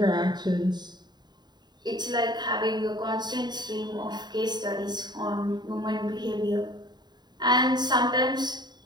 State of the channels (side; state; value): left; late; 0.21 ms